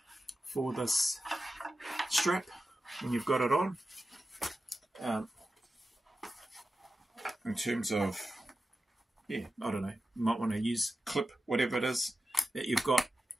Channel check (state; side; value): normal; both; correlation 0.92